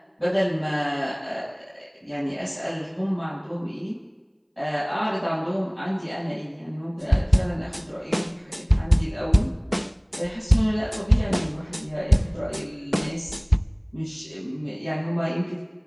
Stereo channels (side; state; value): both; identical; correlation 1.00